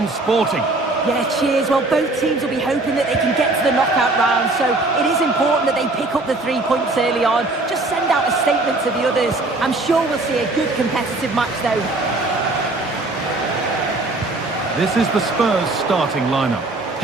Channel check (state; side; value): quieter; left; 3.0 dB